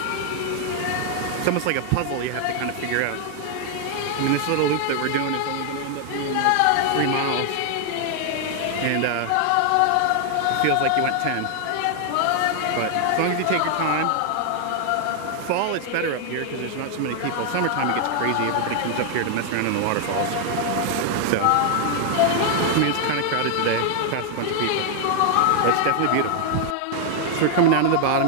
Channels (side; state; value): both; different; correlation 0.00